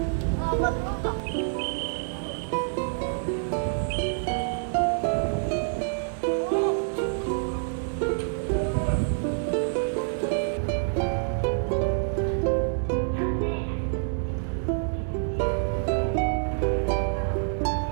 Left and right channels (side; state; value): left; silent; 60 dB below the other